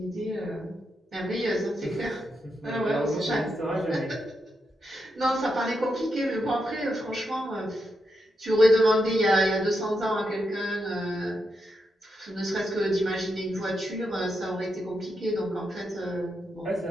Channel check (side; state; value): both; normal; correlation 0.84